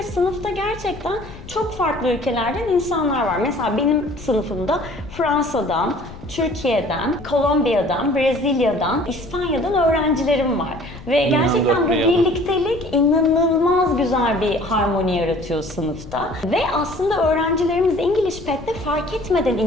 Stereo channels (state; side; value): noise; left; rumble, 15 dB below the sound